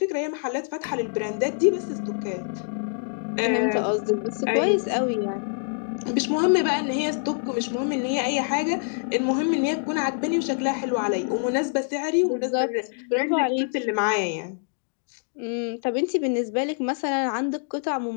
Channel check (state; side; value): silent; right; digital silence